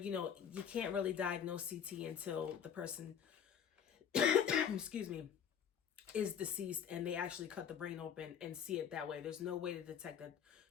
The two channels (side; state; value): right; quieter; 8.3 dB